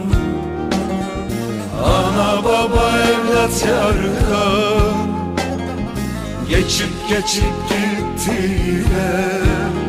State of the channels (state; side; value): identical; both; correlation 1.00